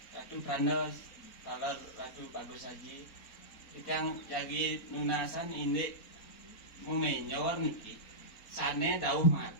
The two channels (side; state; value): right; late; 4.1 ms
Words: pranos talar ratu bagus haji ikang jagi nunasan ini mumenyor niki sane dauh